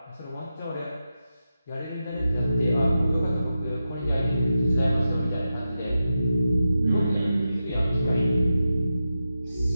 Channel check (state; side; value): inverted; both; correlation -0.90